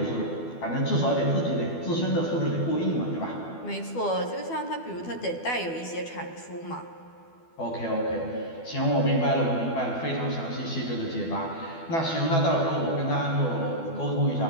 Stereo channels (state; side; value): late; right; 12 ms